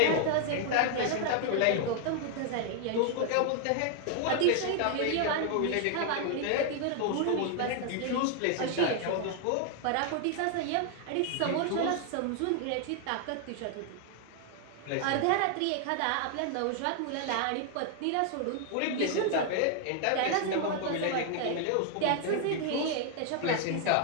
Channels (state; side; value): different; both; correlation 0.00